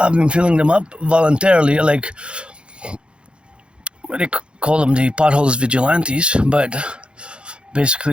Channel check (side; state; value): left; late; 0.056 ms